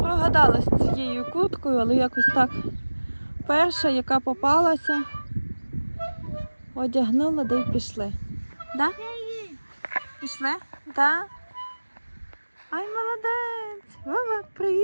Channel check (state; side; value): inverted; both; correlation -1.00